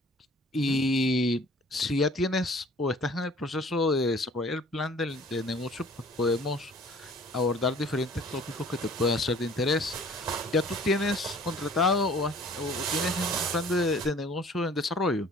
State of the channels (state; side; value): normal; both; correlation 0.50